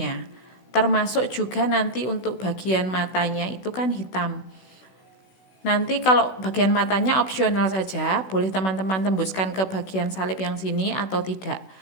Termasuk juga nanti untuk bagian matanya itu kan hitam. Nanti kalau bagian matanya opsional saja, boleh teman-teman tembuskan ke bagian salib yang sini atau tidak.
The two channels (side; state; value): right; late; 16 ms